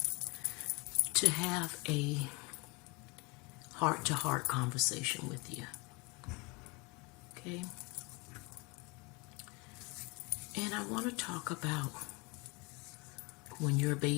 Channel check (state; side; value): quieter; right; 27.4 dB